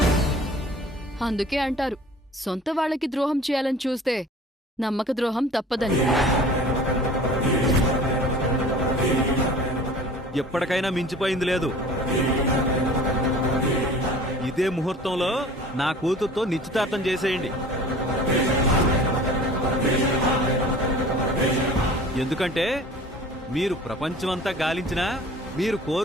అందుకే అంటారు, సొంత వాళ్ళకి ద్రోహం చేయాలని చూస్తే నమ్మక ద్రోహం తప్పదని. ఎప్పటికైనా మించిపోయింది లేదు. ఇదే ముహూర్తంలో నా కూతురుతో నిశ్చితార్థం చేసేయండి. ఎందుకంటే మీరు ప్రపంచమంతా గాలించినా మీరు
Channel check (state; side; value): normal; both; correlation 0.45